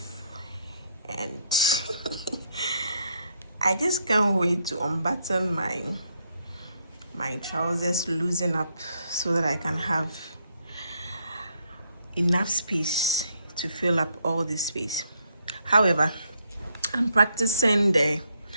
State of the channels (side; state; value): both; inverted; correlation -0.73